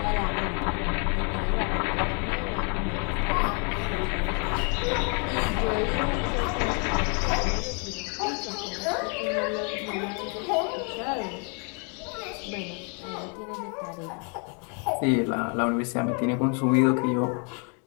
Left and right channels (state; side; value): quieter; right; 38.3 dB